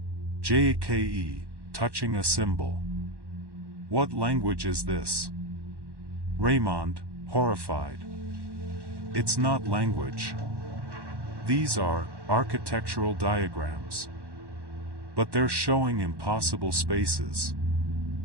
JKE, touching a symbol. What language is this? Raymond, horrified. It's not language. These are architectural diagrams. But they're showing impossible spaces.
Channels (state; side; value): late; left; 1.1 ms